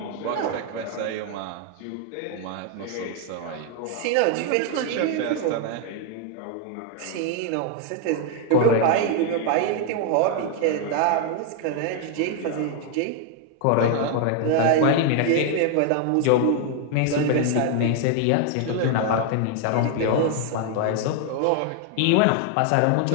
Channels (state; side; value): different; both; correlation 0.00